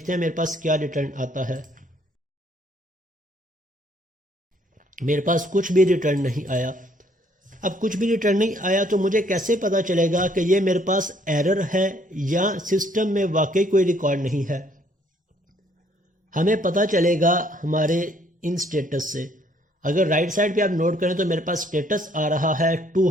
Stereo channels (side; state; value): both; normal; correlation 0.65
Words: हैं मेरे पास क्या रिटर्न आता है। मेरे पास कुछ भी रिटर्न नहीं आया। अब कुछ भी रिटर्न नहीं आया तो मुझे कैसे पता चलेगा कि ये मेरे पास एरर है या सिस्टम में वाकई कोई रिकॉर्ड नहीं है। हमें पता चलेगा हमारे इन स्टेटस से। अगर राइट साइड पे आप नोट करें तो मेरे पास स्टेटस आ रहा है